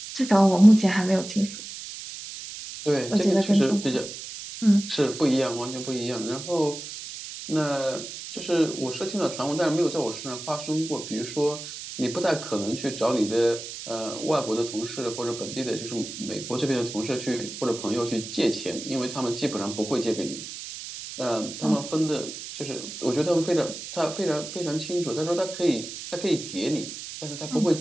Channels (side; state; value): right; noise; hiss, 10 dB below the sound